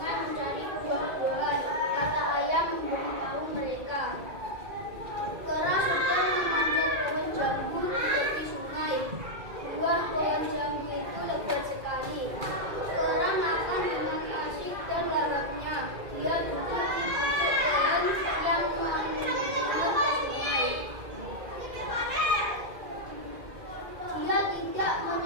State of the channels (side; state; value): left; late; 2.2 ms